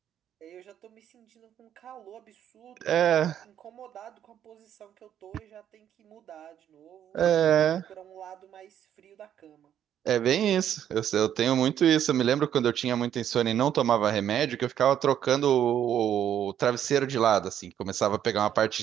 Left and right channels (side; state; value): left; quieter; 10.0 dB